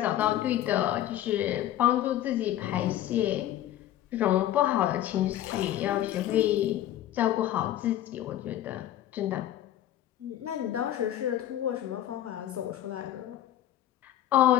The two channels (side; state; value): right; quieter; 12.6 dB